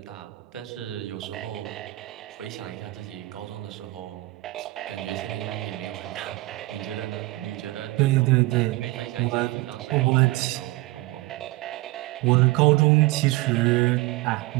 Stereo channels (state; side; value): quieter; left; 20.2 dB